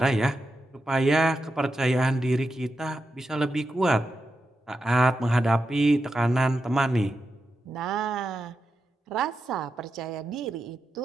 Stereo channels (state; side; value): normal; both; correlation 0.88